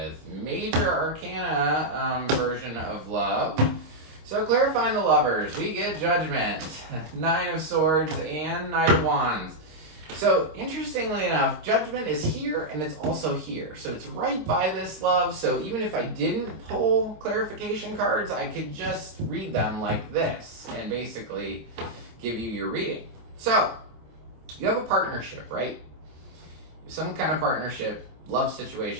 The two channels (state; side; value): late; left; 26 ms